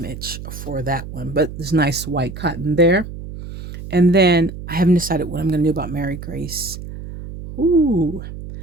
for that one. But there's nice white cotton there. And then I haven't decided what I'm going to do about Mary Grace. Ooh,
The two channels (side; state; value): right; noise; hum, 11 dB below the sound